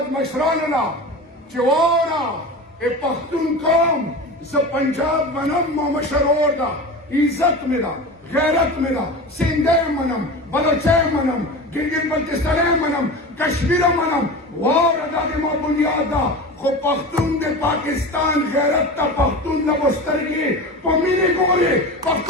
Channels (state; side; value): normal; both; correlation 0.30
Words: مشراننا چوانا اے پختون قوم ز پنجاب منم ما مشرور دا عزت ملا غیرت ملا سندے منم بلوچے منم گلگت بلتستانے منم کشمیر منم وار ادا دے ما بنیاد دا خو پختون دے پاکستان غیرت تا پختون لبسترگی پمیلی گوری